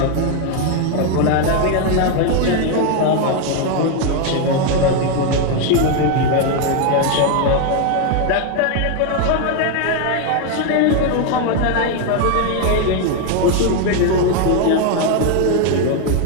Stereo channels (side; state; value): both; different; correlation 0.01